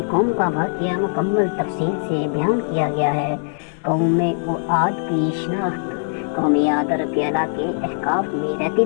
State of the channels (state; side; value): silent; right; 65 dB below the other